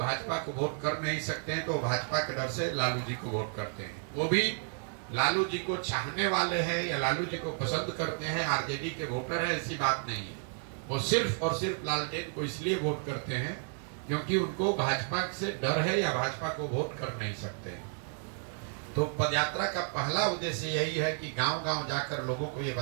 को वोट कर नहीं सकते हैं, तो भाजपा के डर से लालू जी को वोट करते हैं। वो भी लालू जी को चाहने वाले हैं या लालू जी को पसंद करते हैं, आरजेडी के वोटर है, ऐसी बात नहीं है। वो सिर्फ और सिर्फ लालटेन को इसलिए वोट करते हैं क्योंकि उनको भाजपा से डर है या भाजपा को वोट कर नहीं सकते। तो पदयात्रा का पहला उद्देश्य यही है कि गांव-गांव जाकर लोगों को ये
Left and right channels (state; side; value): silent; left; 56 dB below the other